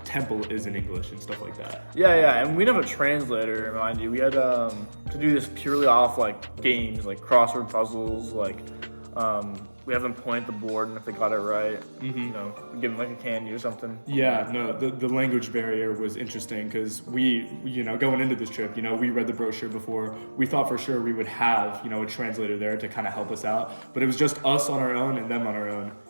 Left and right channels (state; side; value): inverted; both; correlation -1.00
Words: temple is in English and stuff like that. Yeah, and we didn't have a translator, mind you. We had to do this purely off like games, like crossword puzzles. Like we have them point at the board, and if they got it right, we give them like a candy or something. Yeah, no, the language barrier was interesting because we, going into this trip, we read the brochure before. We thought for sure we would have, a translator there to kind of help us out, but it was just us on our own and them on our own.